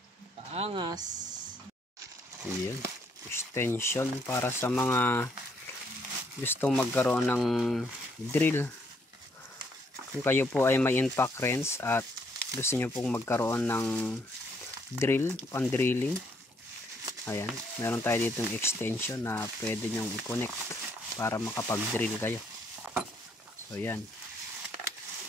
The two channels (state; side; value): normal; both; correlation 0.70